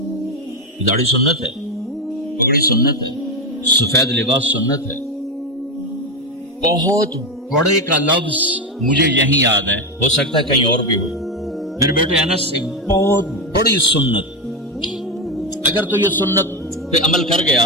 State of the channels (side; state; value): both; normal; correlation 0.11